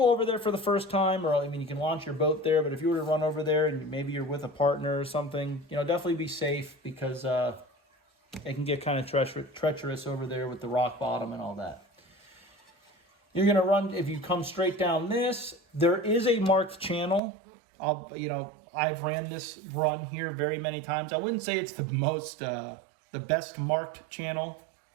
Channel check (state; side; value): drops out; left; at 17.2 s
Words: over there for the first time, or I mean, you can launch your boat there, but if you were to run over there and maybe you're with a partner or something, definitely be safe because it can get kind of treacherous over there with the rock bottom and all that. You're going to run, if you come straight down this, there is a marked channel. I've ran this run here very many times. I wouldn't say it's the best marked channel